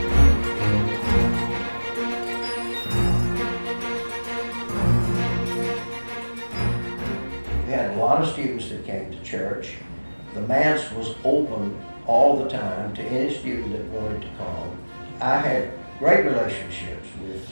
We had a lot of students that came to church. The Manse was open all the time to any student that wanted to come. I had great relationships with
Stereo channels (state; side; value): inverted; both; correlation -1.00